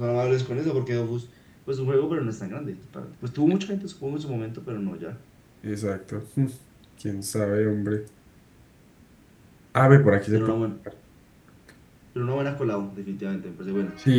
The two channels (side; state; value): both; identical; correlation 1.00